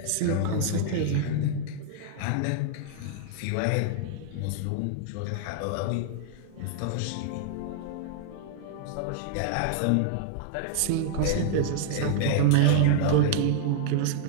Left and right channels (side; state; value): both; different; correlation -0.01